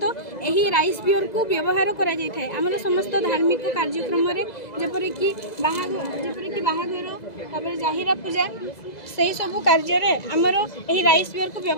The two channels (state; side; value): late; right; 2.0 ms